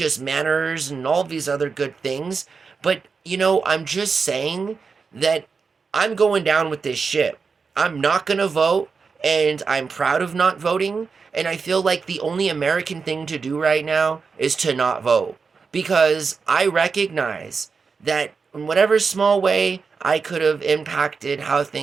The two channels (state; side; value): quieter; left; 5.1 dB